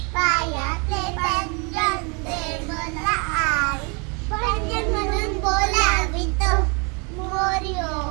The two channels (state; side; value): quieter; left; 32.1 dB